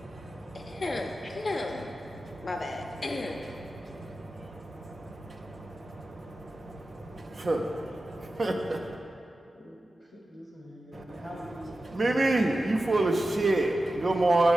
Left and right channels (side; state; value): both; normal; correlation 0.93